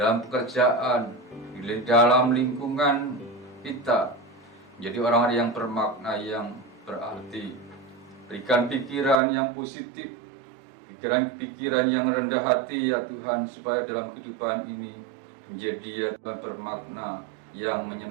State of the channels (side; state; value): left; drops out; at 9.2 s